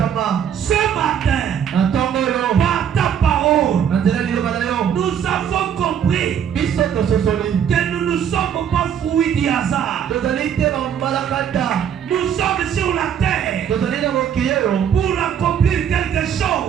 Ce matin, par ta parole, nous avons compris que nous ne sommes pas fruits du hasard. Nous sommes sur la terre pour accomplir quelque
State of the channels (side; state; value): left; quieter; 8.6 dB